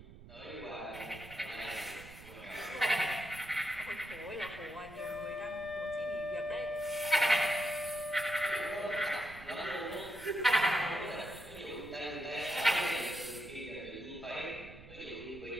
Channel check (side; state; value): right; noise; rumble, 17 dB below the sound